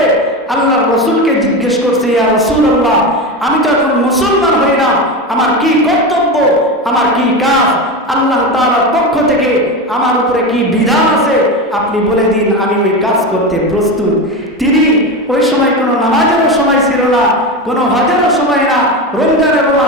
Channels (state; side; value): normal; both; correlation 0.20